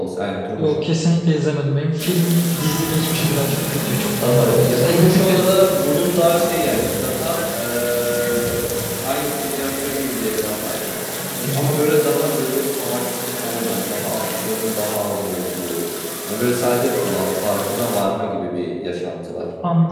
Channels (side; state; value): both; identical; correlation 1.00